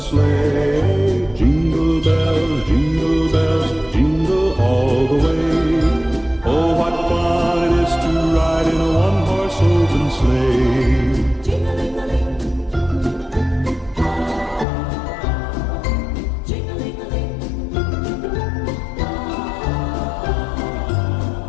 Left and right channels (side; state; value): right; drops out; at 14.7 s